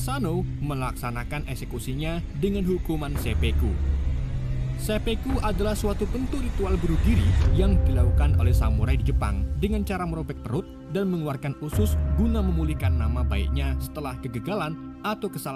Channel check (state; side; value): identical; both; correlation 1.00